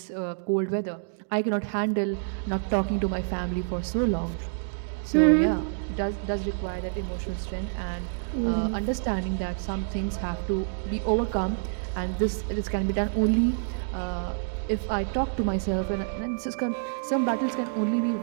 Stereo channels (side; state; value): left; silent; digital silence